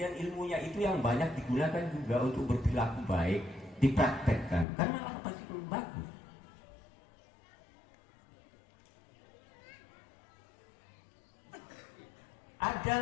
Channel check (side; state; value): right; drops out; at 4.7 s